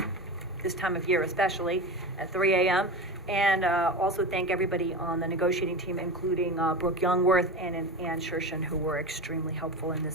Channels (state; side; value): normal; both; correlation 0.25